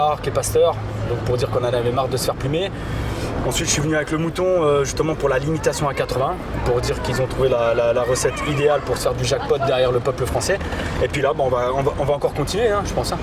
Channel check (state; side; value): identical; both; correlation 1.00